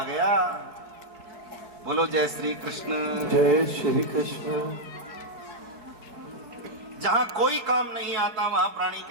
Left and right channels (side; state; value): left; late; 4.7 ms